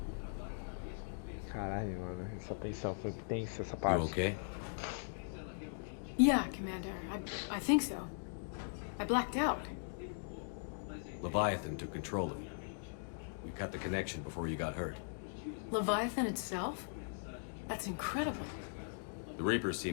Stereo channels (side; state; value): right; silent; digital silence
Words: Caralho, mano, essa tensão foi tensa, essa parte. You okay? Yeah, Commander. I think so. I blacked out. Leviathan took control of you. We cut the connection before you got hurt. Leviathan itself? That's incredible. The Reapers